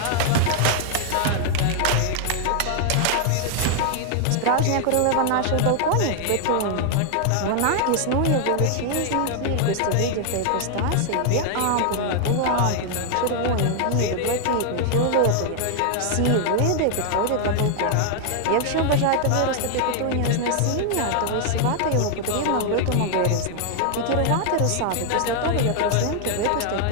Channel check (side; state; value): both; different; correlation 0.00